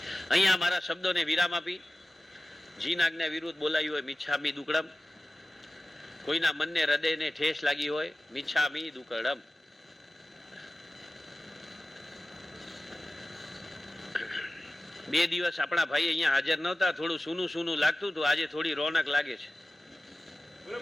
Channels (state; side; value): normal; both; correlation 0.95